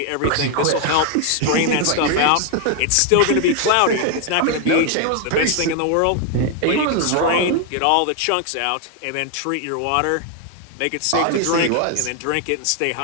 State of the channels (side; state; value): both; different; correlation 0.01